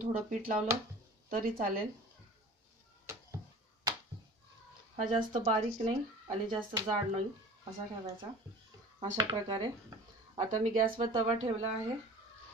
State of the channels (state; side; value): normal; both; correlation 0.41